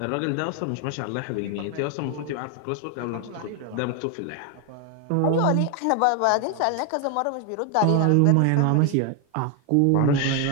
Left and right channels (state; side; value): different; both; correlation 0.01